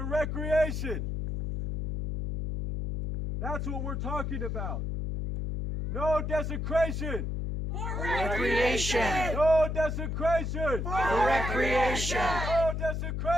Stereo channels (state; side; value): noise; left; hum, 2 dB below the sound